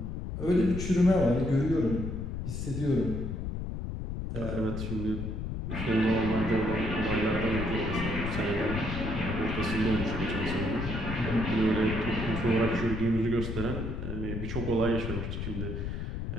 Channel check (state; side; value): noise; left; rumble, 4 dB below the sound